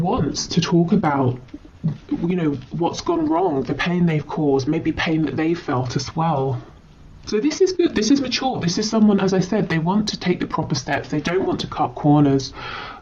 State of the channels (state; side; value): identical; both; correlation 1.00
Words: to talk about, you know, what's gone wrong, the pain they've caused, maybe pain that they felt as well. So this is good, this is mature, this is someone, as I said, they want to take the proper steps, they don't want to cut corners.